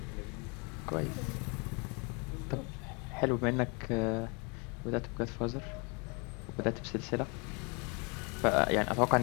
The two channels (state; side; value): quieter; right; 32.5 dB